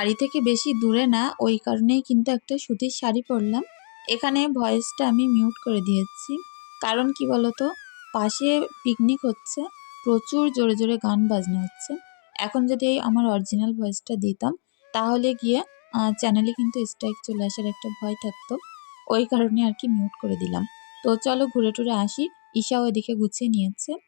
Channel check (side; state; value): right; silent; 63 dB below the other